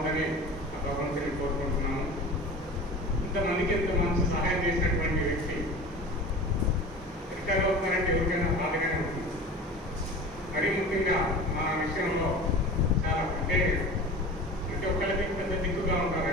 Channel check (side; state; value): both; normal; correlation 0.37